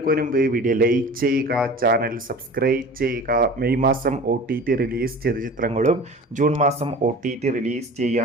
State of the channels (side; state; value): both; normal; correlation 0.39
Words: മുൻപ് വീഡിയോ ലൈക്ക് ചെയ്യുക, ചാനൽ സബ്സ്ക്രൈബ് ചെയ്യുക. മെയ് മാസം OTT റിലീസ് ചെയ്ത ചിത്രങ്ങളും ജൂൺ മാസം OTT റിലീസ്